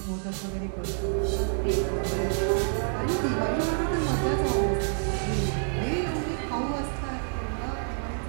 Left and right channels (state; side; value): silent; left; digital silence